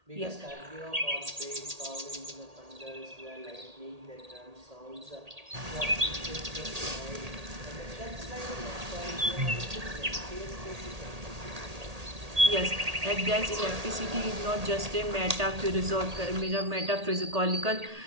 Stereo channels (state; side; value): late; left; 1.8 ms